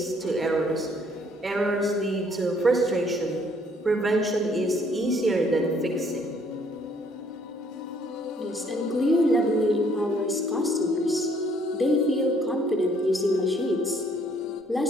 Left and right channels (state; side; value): normal; both; correlation 0.64